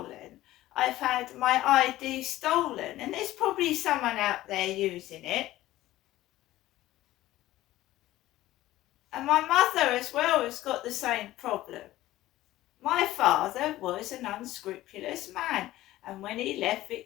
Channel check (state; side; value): quieter; right; 15.7 dB